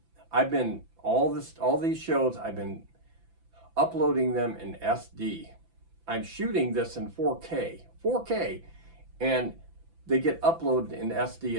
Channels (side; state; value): left; late; 5.9 ms